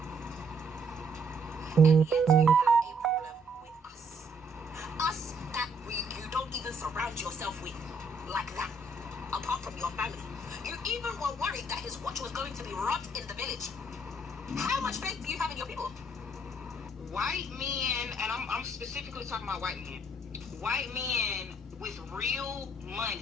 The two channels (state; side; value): normal; both; correlation 0.68